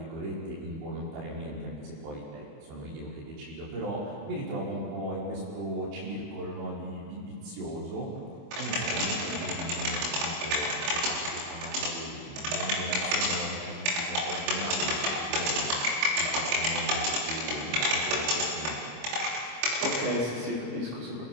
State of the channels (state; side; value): late; left; 25 ms